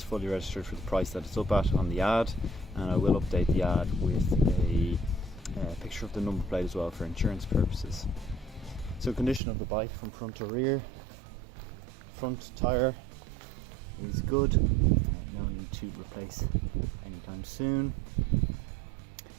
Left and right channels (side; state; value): left; drops out; at 9.4 s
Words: fully registered for the price that it's up at on the ad, and I will update the ad with a picture of the number plate as well for insurance purposes. So condition of the bike from front to rear: front tyre is good, no need to replace anytime soon.